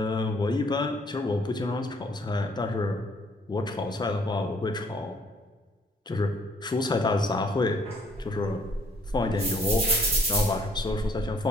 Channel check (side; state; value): both; normal; correlation 0.62